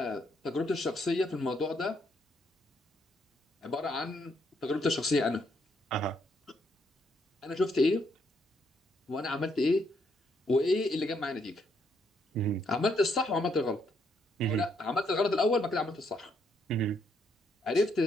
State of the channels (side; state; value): both; normal; correlation 0.74